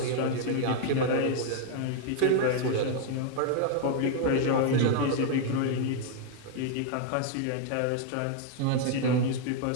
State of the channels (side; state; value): both; different; correlation 0.00